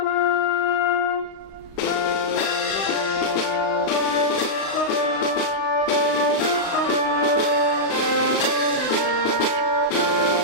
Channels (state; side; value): late; right; 35 ms